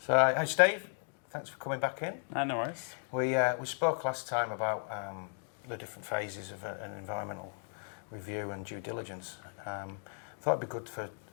So, hey Steve, thanks for coming back in. No worries. We spoke last time about the different phases of an environmental review and due diligence. Thought it'd be good for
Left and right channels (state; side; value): silent; right; 54 dB below the other